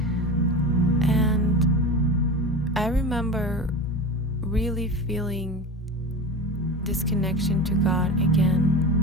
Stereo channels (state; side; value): normal; both; correlation 0.28